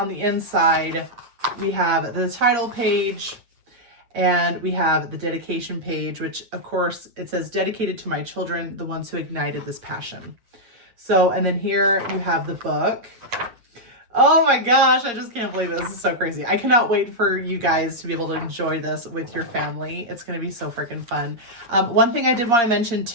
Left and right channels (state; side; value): late; left; 8.6 ms